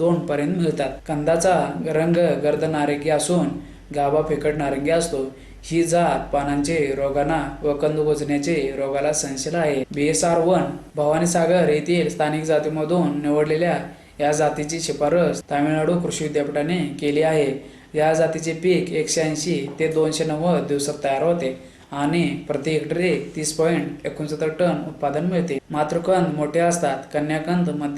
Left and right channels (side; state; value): both; identical; correlation 1.00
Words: पर्यंत मिळतात. कंदाचा रंग गर्द नारंगी असून गाभा फिकट नारंगी असतो. ही जात पानांचे रोगांना व कंद कुजण्याचे रोगाला सहनशील आहे. BSR1 भवानीसागर येथील स्थानिक जातीमधून निवडलेल्या या जातीची शिफारस तामिळनाडू कृषी विद्यापीठाने केली आहे. या जातीचे पीक 180 ते 290 दिवसात तयार होते आणि प्रति हेक्टरी 30.69 टन उत्पादन मिळते. मातृकंद मोठे असतात. कन्याकंद